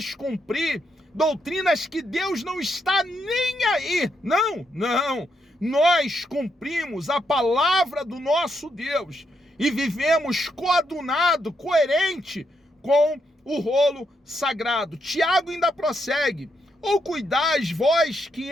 cumprir, doutrinas que Deus não está nem aí. Não, não. Nós cumprimos a palavra do nosso Deus e vivemos coadunado, coerente com o rolo sagrado. Tiago ainda prossegue: ou cuidais vós que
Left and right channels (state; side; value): normal; both; correlation 0.79